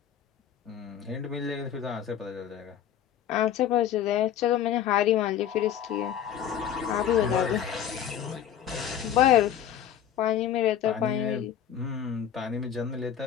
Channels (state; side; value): quieter; right; 9.8 dB